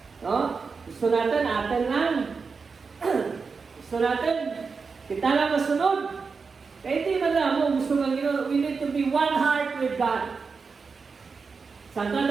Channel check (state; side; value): quieter; left; 5.0 dB